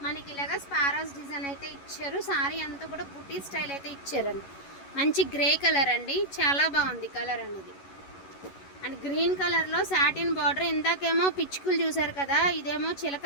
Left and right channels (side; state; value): right; late; 11 ms